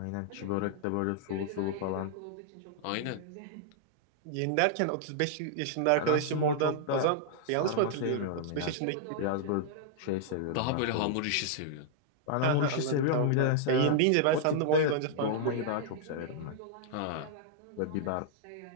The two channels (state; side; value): different; both; correlation -0.01